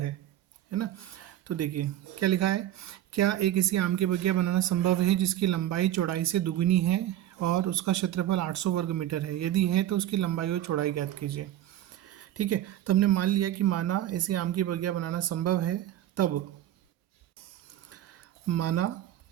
ना। तो देखिए क्या लिखा है, क्या एक इसी आम के बगिया बनाना संभव है जिसकी लंबाई चौड़ाई से दुगुनी है और उसका क्षेत्रफल 800 वर्ग मीटर है। यदि है तो उसकी लंबाई और चौड़ाई ज्ञात कीजिए। ठीक है, तो हमने मान लिया कि माना ऐसे आम की बगिया बनाना संभव है। तब माना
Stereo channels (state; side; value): quieter; left; 12.6 dB